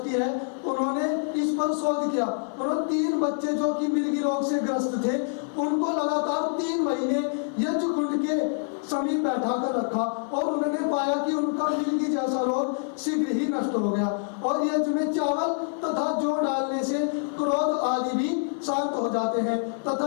है, उन्होंने इस पर शोध किया। उन्होंने 3 बच्चे जो कि मिर्गी रोग से ग्रस्त थे, उनको लगातार 3 महीने यज्ञ कुंड के समीप बैठा कर रखा, और उन्होंने पाया कि उनका मिर्गी जैसा रोग शीघ्र ही नष्ट हो गया। और यज्ञ में चावल तथा जौ डालने से क्रोध आदि भी शांत हो जाते हैं।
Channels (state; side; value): silent; right; 58 dB below the other